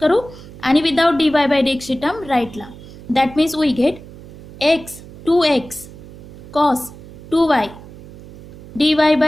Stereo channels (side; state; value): right; noise; hum, 17 dB below the sound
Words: करू आणि विदाउट dy बाय dx ची टर्म राईटला. That means we get x 2x cos 2y dy